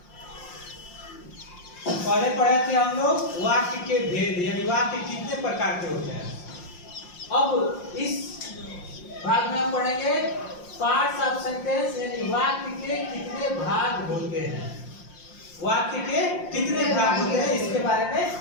पहले पढ़े थे हम लोग वाक्य के भेद, यानी वाक्य कितने प्रकार के होते हैं। अब इस भाग में हम पढ़ेंगे पार्ट्स ऑफ सेंटेंस, यानी वाक्य के कितने भाग होते हैं। वाक्य के कितने भाग होते हैं इसके बारे में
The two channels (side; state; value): right; late; 5.6 ms